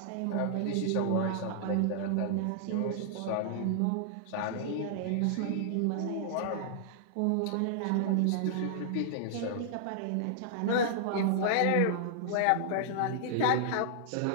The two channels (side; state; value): both; different; correlation -0.01